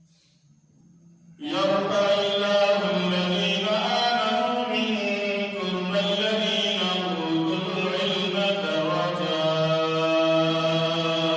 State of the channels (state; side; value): identical; both; correlation 1.00